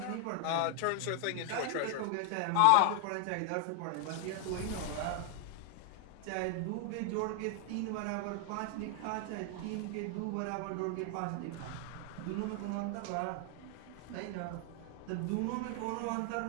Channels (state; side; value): different; both; correlation 0.00